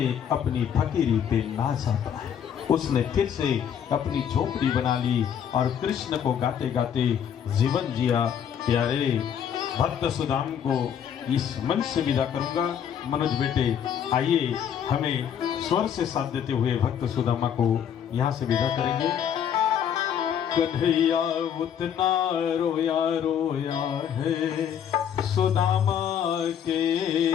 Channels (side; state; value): right; quieter; 8.7 dB